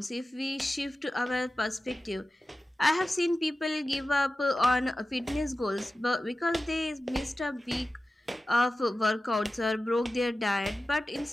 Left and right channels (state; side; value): normal; both; correlation 0.95